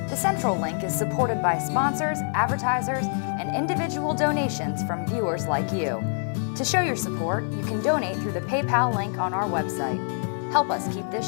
The Central Link is supported by sponsors, advertisers, and individual donations from viewers like you. To show your support, you can donate through the PayPal link on our website. Help us keep this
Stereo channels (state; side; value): silent; right; 57 dB below the other